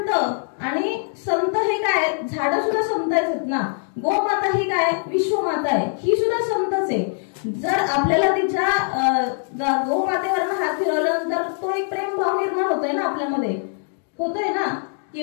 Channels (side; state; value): right; silent; 63 dB below the other